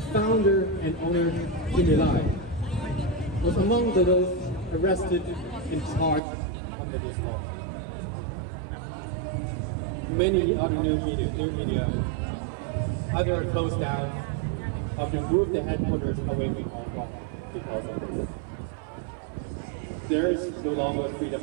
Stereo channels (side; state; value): left; drops out; at 6.2 s